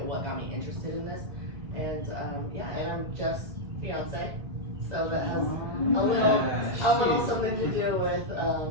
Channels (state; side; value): late; left; 2.0 ms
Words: What got me interested in this, and and I'm just fiance, so that has a little something to do with